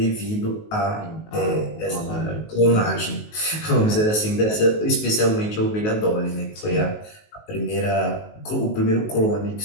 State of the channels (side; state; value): right; late; 19 ms